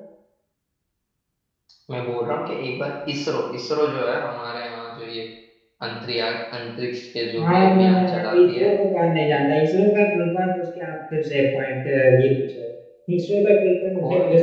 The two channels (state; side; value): identical; both; correlation 1.00